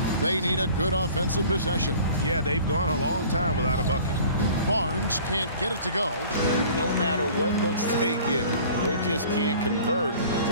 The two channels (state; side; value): inverted; both; correlation -0.47